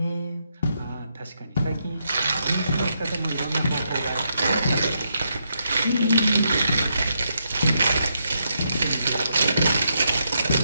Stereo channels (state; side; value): inverted; both; correlation -0.80